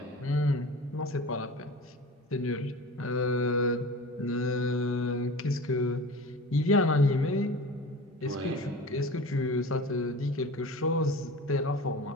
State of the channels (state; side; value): normal; both; correlation 0.36